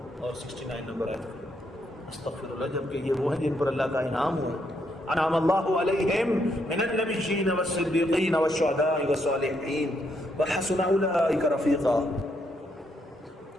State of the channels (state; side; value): normal; both; correlation 0.76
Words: اور 69 نمبر آیت۔ استغفر اللہ، جبکہ یہ وہ ہیں جن پر اللہ کا انعام ہوا۔ انعم اللہ علیہم من النبیین والصدیقین والشہداء والصالحین وحسن اولئک رفیقا۔